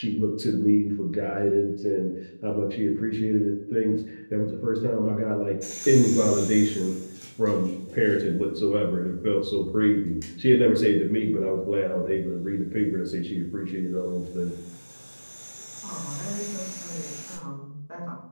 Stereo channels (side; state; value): both; inverted; correlation -1.00